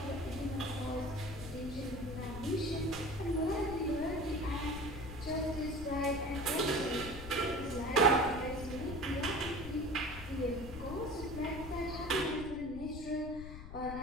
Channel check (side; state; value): left; noise; rumble, 10 dB below the sound